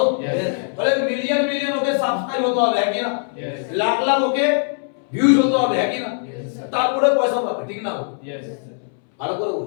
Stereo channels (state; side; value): silent; right; 65 dB below the other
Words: Yes. বলে মিলিয়ন মিলিয়ন ওকে সাবস্ক্রাইব হতে হবে, হ্যাঁ কি না? Yes. লাখ লাখ ওকে ভিউজ হতে হবে, হ্যাঁ কি না? Yes. তারপরে পয়সা পাবে, ঠিক না? Yes. ভালো করে